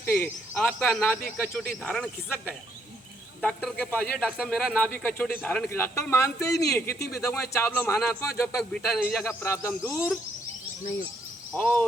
आपका नाभि कचोटी धारण खिसक गया, डॉक्टर के पास ये डॉक्टर मेरा नाभि कचोटी धारण की, डॉक्टर मानते ही नहीं है, कितनी भी दवाएं चावलो महानात्मा, जब तक बीटा नहीं जाएगा प्रॉब्लम दूर नहीं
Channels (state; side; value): normal; both; correlation 0.71